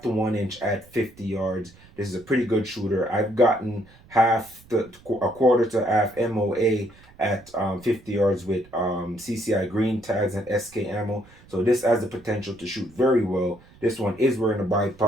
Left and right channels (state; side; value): noise; right; rumble, 25 dB below the sound